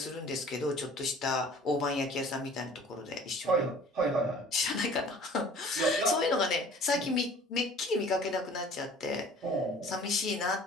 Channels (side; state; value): both; normal; correlation 0.48